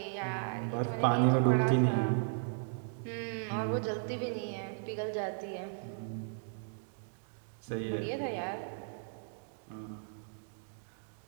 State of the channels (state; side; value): silent; left; digital silence